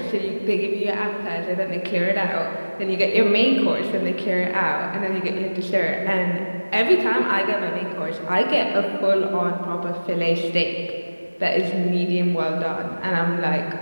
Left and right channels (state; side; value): inverted; both; correlation -1.00